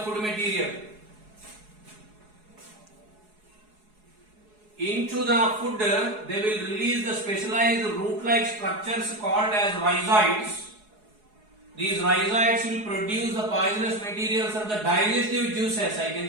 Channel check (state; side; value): late; left; 4.7 ms